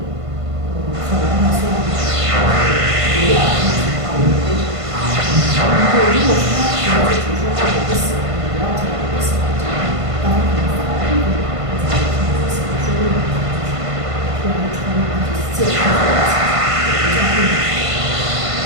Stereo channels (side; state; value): left; late; 1.5 ms